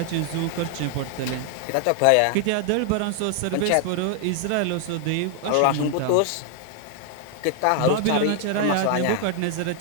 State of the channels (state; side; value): different; both; correlation 0.00